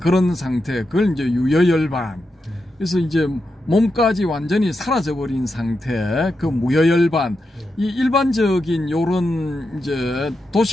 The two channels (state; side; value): normal; both; correlation 0.87